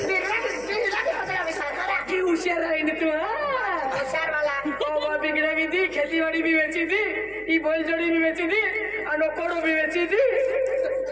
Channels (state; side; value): noise; right; hum, 22 dB below the sound